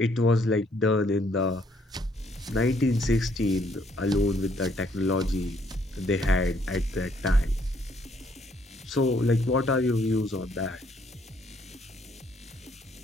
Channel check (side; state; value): both; normal; correlation 0.68